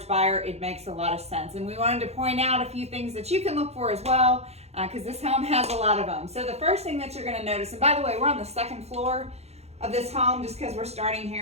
buyer, it makes a lot of sense. And we wanted to point out a few things that you can look for as well, because this home has a lot of them. So the first thing that you're gonna notice, and by the way, we're on the second floor of this home just because we're starting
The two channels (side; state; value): left; late; 0.31 ms